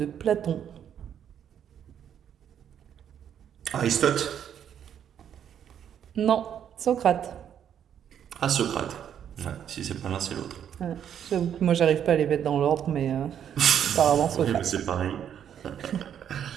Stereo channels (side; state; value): left; quieter; 9.1 dB